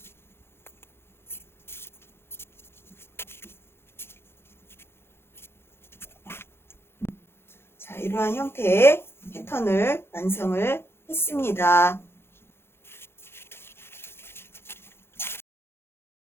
자, 이러한 형태의 패턴을 완성을 했습니다.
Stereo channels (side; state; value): right; late; 0.11 ms